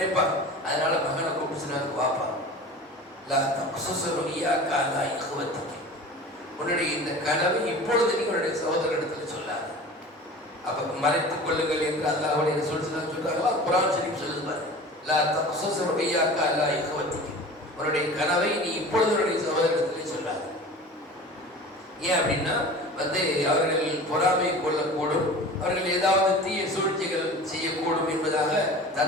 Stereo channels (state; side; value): normal; both; correlation 0.38